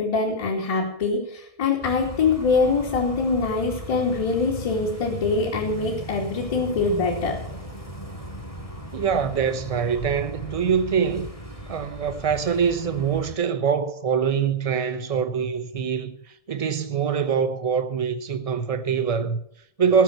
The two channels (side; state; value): right; late; 1.6 ms